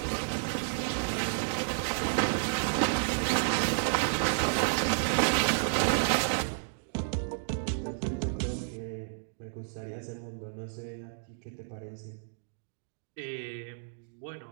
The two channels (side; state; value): left; silent; digital silence